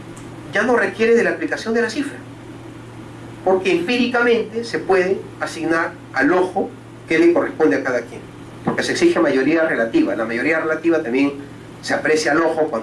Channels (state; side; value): identical; both; correlation 1.00